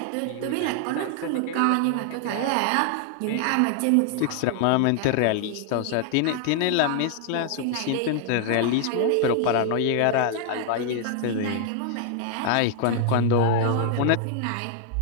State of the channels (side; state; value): both; different; correlation 0.00